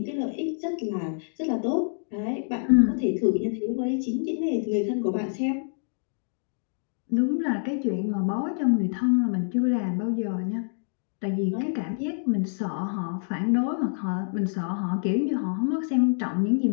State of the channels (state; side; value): silent; right; digital silence